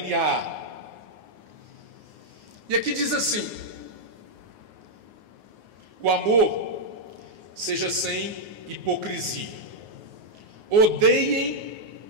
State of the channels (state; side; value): late; left; 9.6 ms